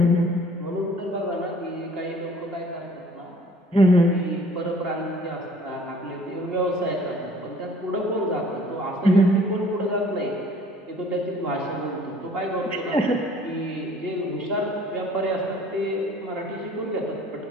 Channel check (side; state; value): both; normal; correlation 0.54